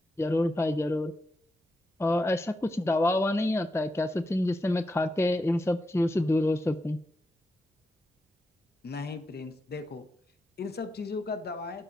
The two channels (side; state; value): both; normal; correlation 0.87